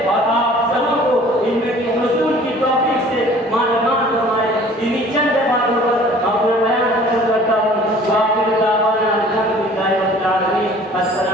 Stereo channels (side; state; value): both; normal; correlation 0.50